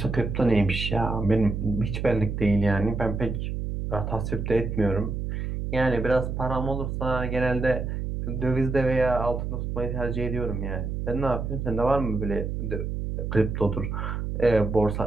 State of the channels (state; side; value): noise; right; hum, 3 dB below the sound